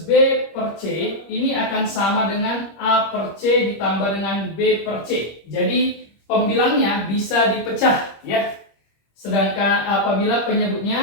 B per C ini akan sama dengan A per C ditambah dengan B per C. Jadi pembilangnya bisa dipecah ya. Sedangkan apabila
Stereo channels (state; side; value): late; right; 25 ms